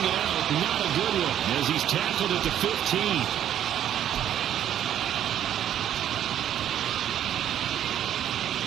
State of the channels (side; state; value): left; quieter; 10.6 dB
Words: it out, not a good one, as he's tackled at the 15.